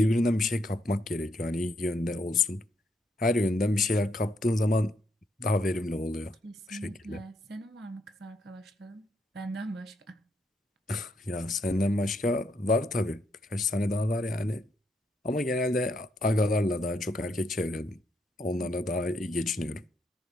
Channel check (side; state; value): both; normal; correlation 0.75